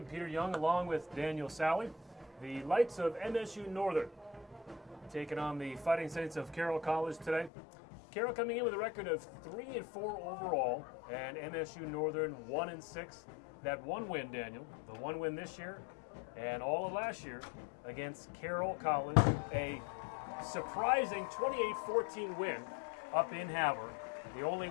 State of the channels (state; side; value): drops out; right; at 7.5 s